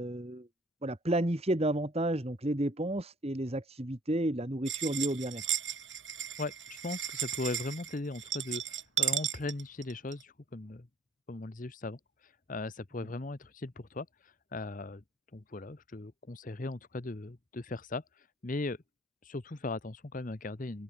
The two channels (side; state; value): both; normal; correlation 0.57